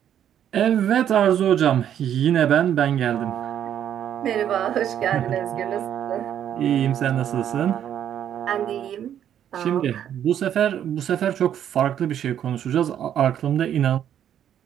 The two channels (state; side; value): quieter; left; 10.0 dB